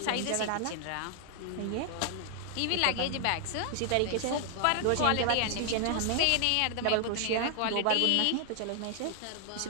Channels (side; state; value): both; different; correlation 0.00